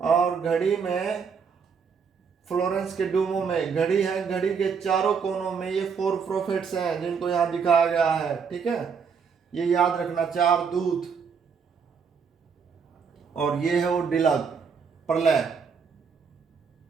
घड़ी में फ्लोरेंस के डूमो में घड़ी है, घड़ी के चारों कोनों में ये फोर प्रोफेट्स हैं जिनको यहाँ दिखाया गया है। ठीक है, ये याद रखना, 4 दूत। और ये है वो डिलग, प्रलय।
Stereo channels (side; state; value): left; quieter; 6.1 dB